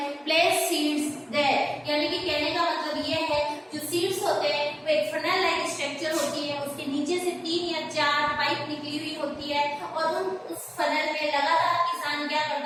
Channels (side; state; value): both; identical; correlation 1.00